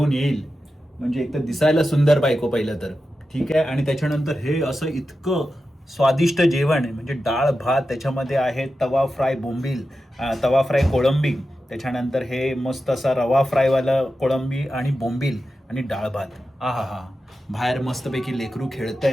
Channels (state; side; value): normal; both; correlation 0.91